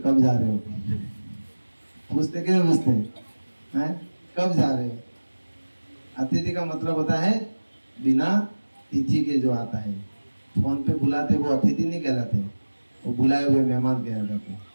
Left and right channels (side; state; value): both; inverted; correlation -1.00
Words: कब जा रहे हो, पूछते क्यों पूछते हैं, कब जा रहे हो। अतिथि का मतलब होता है बिना तिथि के जो आता है। फोन पे बुलाते वो अतिथि नहीं कहलाते, वो बुलाए हुए मेहमान कहलाते हैं।